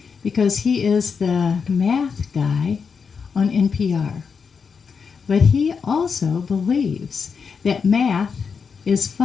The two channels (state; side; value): quieter; right; 5.9 dB